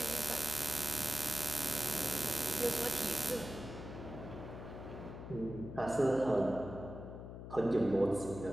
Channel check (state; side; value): noise; left; hum, 10 dB below the sound